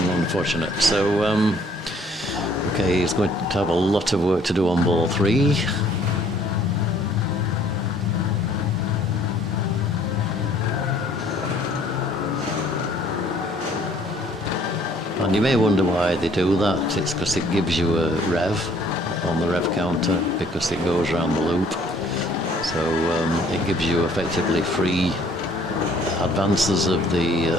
Unfortunate. So, okay, he's going to have a lot of work to do on ball 3. And you may wonder why they do that. It's because it gives you a rev on the rev counter because it goes around the loop. So it gives you effectively free advances of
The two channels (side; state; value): both; normal; correlation 0.59